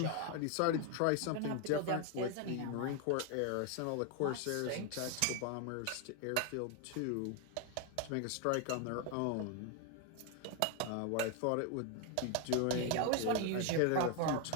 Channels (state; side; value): different; both; correlation 0.01